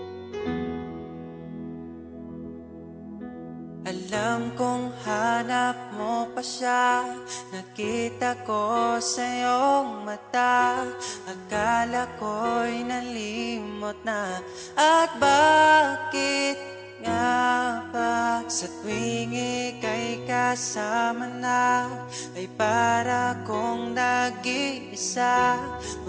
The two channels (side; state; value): both; identical; correlation 1.00